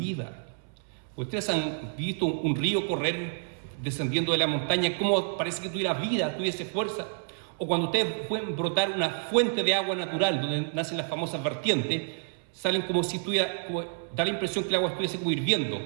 Ustedes han visto un río correr descendiendo de la montaña, cómo parece que tuviera vida, tuviese fuerza. O cuando ustedes pueden brotar una fuente de agua natural, donde nacen las famosas vertientes, salen como si da la impresión que el agua estuviese como hirviendo,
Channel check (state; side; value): silent; left; 58 dB below the other